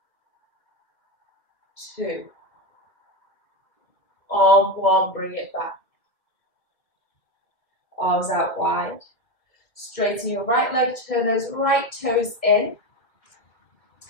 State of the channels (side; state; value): right; late; 2.3 ms